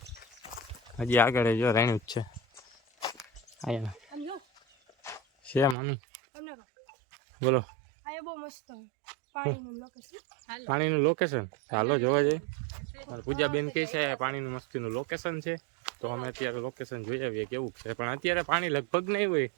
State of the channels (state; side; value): drops out; left; at 5.8 s